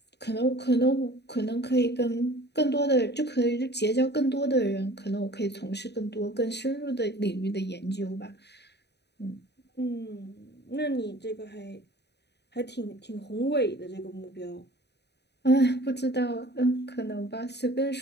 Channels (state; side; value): late; right; 0.49 ms